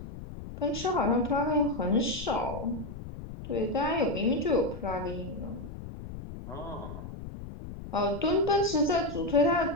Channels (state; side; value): noise; left; rumble, 11 dB below the sound